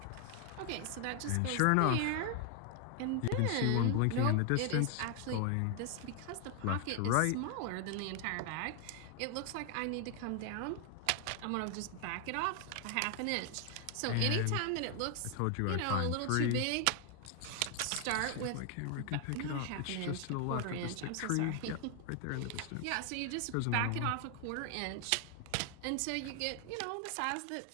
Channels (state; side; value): different; both; correlation 0.00